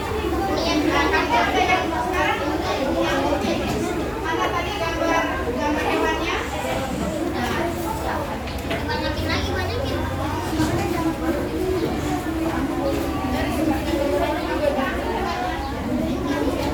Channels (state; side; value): identical; both; correlation 1.00